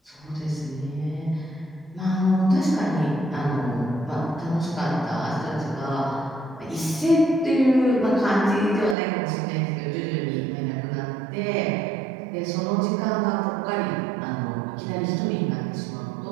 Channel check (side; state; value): left; drops out; at 9.0 s